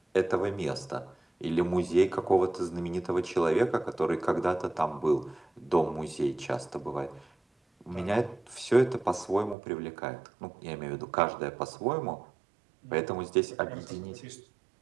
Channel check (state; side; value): drops out; left; at 9.6 s